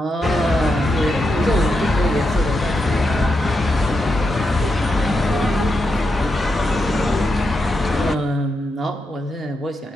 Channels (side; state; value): both; normal; correlation 0.85